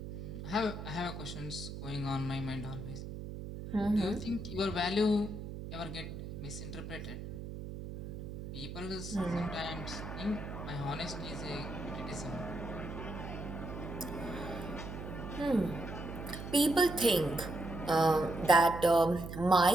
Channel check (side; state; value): right; noise; hum, 8 dB below the sound